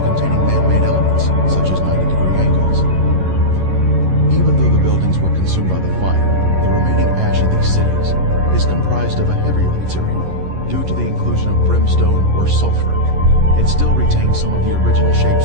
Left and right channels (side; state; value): left; late; 11 ms